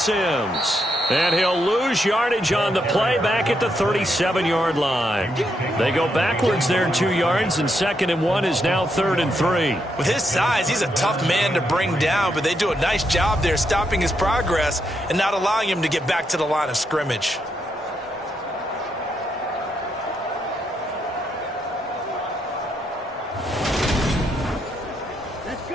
And he'll lose yardage on the play back at the 37-yard line. They go backwards there 2 yards, and 2nd and 1 is now 3rd and 3. With his size, he's a tough man to bring down, but they do a nice job there stopping his progress and not allowing him to get back to the line of scrimmage.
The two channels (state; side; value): normal; both; correlation 0.79